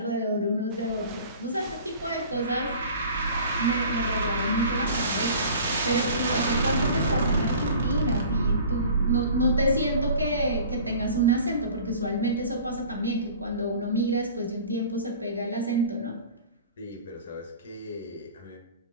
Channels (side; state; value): both; inverted; correlation -0.44